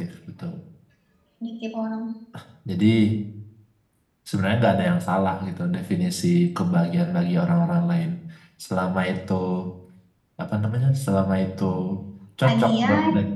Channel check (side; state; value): both; identical; correlation 1.00